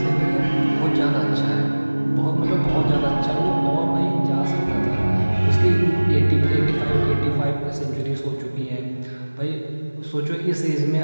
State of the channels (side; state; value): both; inverted; correlation -1.00